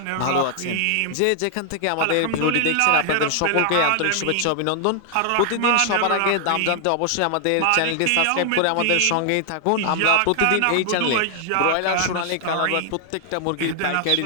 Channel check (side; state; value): both; different; correlation 0.00